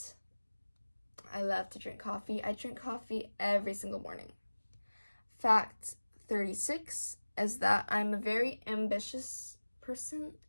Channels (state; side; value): inverted; both; correlation -1.00